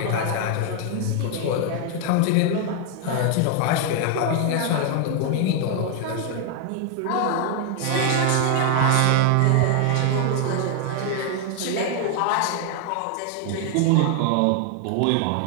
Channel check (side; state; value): both; different; correlation 0.00